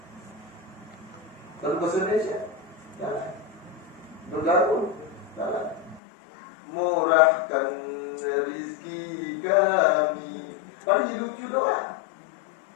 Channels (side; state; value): right; drops out; at 6.0 s